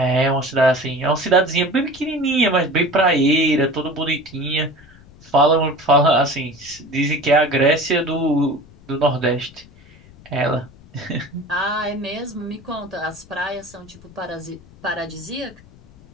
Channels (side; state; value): left; noise; rumble, 24 dB below the sound